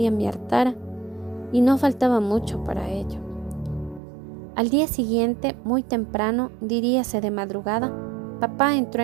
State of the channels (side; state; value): left; drops out; at 4.0 s